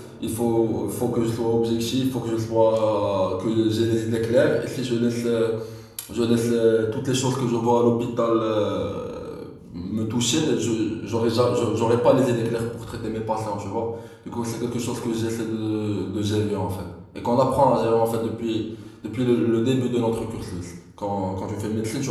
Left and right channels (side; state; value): both; identical; correlation 1.00